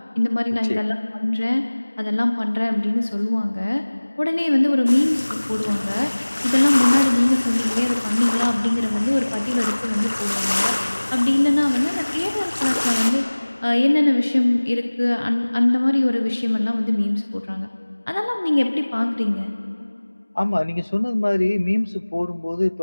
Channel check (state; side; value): inverted; both; correlation -1.00